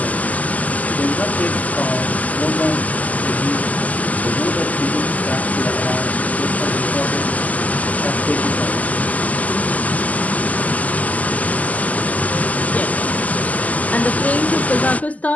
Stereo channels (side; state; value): right; late; 0.075 ms